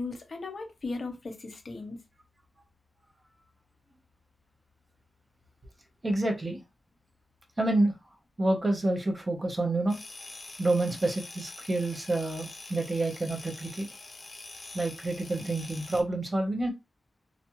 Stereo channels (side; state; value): both; normal; correlation 0.92